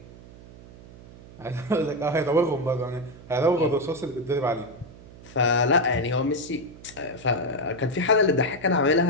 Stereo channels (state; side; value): noise; right; hum, 19 dB below the sound